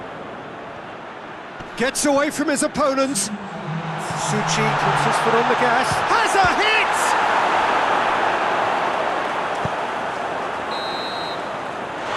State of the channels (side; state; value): both; identical; correlation 1.00